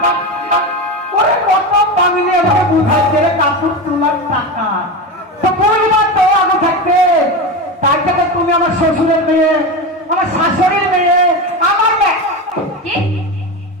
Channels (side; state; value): both; normal; correlation 0.21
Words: ওরে কত পাগলি আমাকে বুঝাচ্ছে রে কাপড় তোলার টাকা। তো পরিবার তো আগে থাকতে, তার থেকে তুমি আমার শ্বশুরের মেয়ে, আমার শাশুড়ির মেয়ে, আমার মেয়ে। কি?